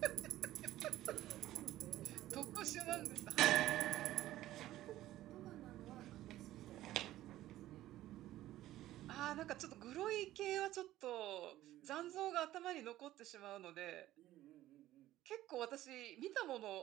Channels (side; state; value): left; quieter; 14.6 dB